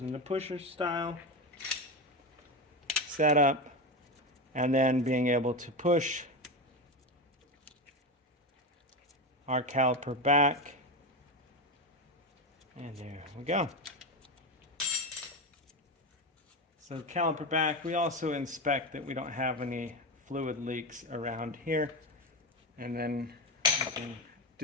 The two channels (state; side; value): normal; both; correlation 0.17